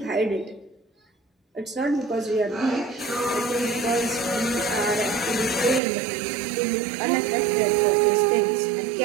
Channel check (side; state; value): left; drops out; at 5.8 s